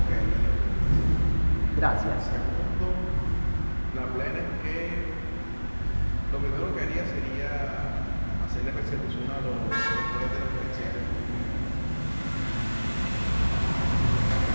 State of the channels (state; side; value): inverted; both; correlation -1.00